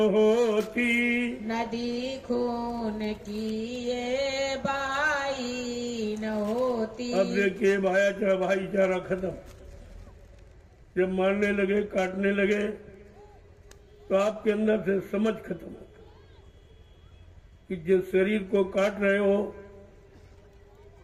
होती, नदी खून की ये बहाई न होती। अब देखिए भाईचारा खत्म। जब मारने लगे काटने लगे तो आपके अंदर से समझ खत्म हो कि जिस शरीर को काट रहे हो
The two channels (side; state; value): both; identical; correlation 1.00